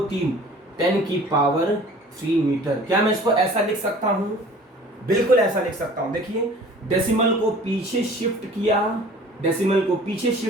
3 10 की पावर 3 मीटर। क्या मैं इसको ऐसा लिख सकता हूं? बिल्कुल ऐसा लिख सकता हूं। देखिए डेसिमल को पीछे शिफ्ट किया, डेसिमल को पीछे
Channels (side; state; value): both; normal; correlation 0.47